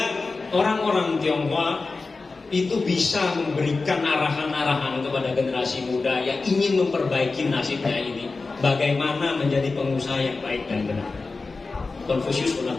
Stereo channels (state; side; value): quieter; right; 3.9 dB